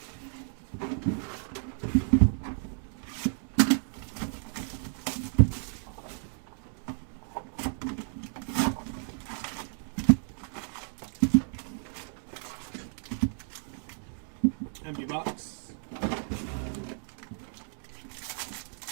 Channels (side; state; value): left; silent; 57 dB below the other